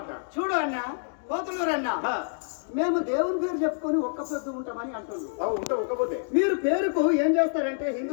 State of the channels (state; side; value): silent; right; digital silence